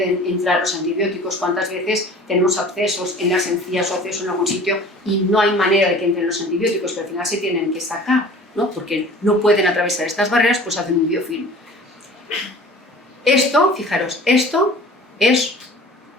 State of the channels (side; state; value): both; normal; correlation 0.44